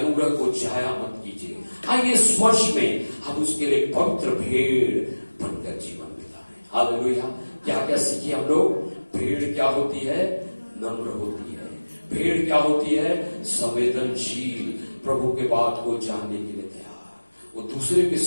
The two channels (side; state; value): both; inverted; correlation -1.00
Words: को जाया मत कीजिए। आइए इस वर्ष में हम उसके लिए पवित्र भीड़ बनकर जीवन बिताएं। हालेलुया। क्या क्या सीखे हम लोग? भीड़ क्या होती है? नम्र होती है। भीड़ क्या होती है? संवेदनशील, प्रभु के बात को जानने के लिए तैयार। वो दूसरे के